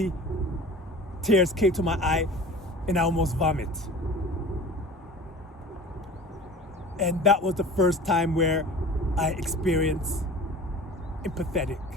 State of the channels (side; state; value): both; normal; correlation 0.40